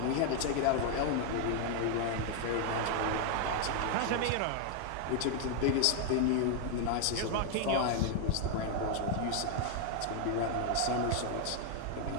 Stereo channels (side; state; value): both; different; correlation 0.00